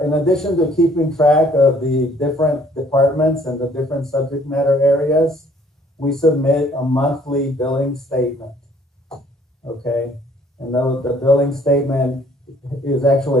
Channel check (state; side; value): normal; both; correlation 0.60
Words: addition to keeping track of the different departments and the different subject matter areas, we submit a monthly billing statement. Okay, and the billing statement is